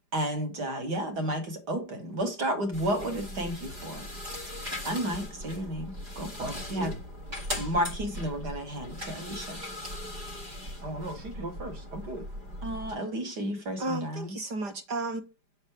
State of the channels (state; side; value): late; left; 5.0 ms